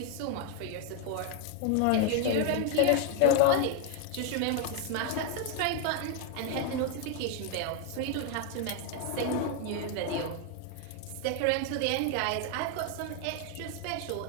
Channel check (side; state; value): both; different; correlation 0.01